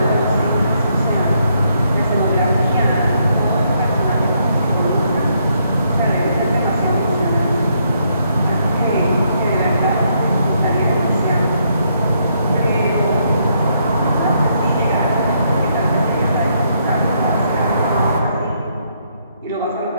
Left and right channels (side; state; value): both; inverted; correlation -0.74